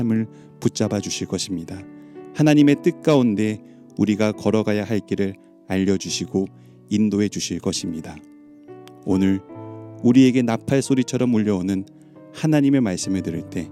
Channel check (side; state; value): both; identical; correlation 1.00